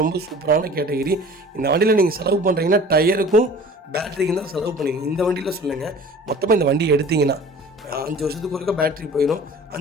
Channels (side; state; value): both; normal; correlation 0.44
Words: ரொம்ப சூப்பரான கேட்டகிரி. இந்த வண்டியில் நீங்கள் செலவு பண்ணுறீங்கன்னா டயருக்கும் பேட்டரிக்கும் தான் செலவு பண்ணுவீங்க. இந்த வண்டியில் சொல்லுங்கள், மொத்தமாக இந்த வண்டி எடுத்திங்கன்னா 5 வருஷத்துக்கு ஒருக்கா பேட்டரி போயிடும்,